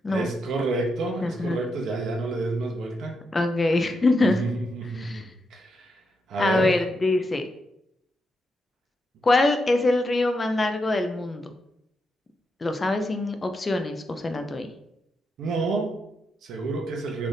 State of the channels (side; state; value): both; normal; correlation 0.83